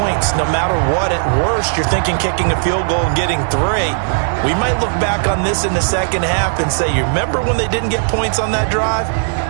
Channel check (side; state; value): left; silent; digital silence